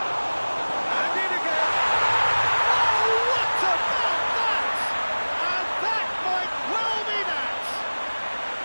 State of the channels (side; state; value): both; inverted; correlation -1.00